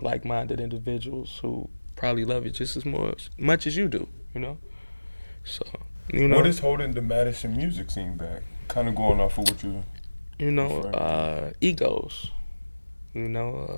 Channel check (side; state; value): both; inverted; correlation -1.00